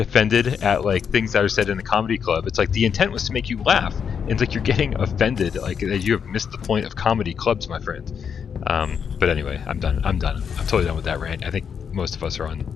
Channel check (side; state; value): right; quieter; 7.1 dB